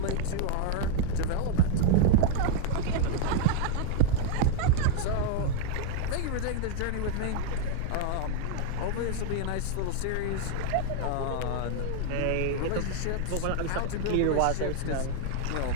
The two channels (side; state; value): both; different; correlation 0.00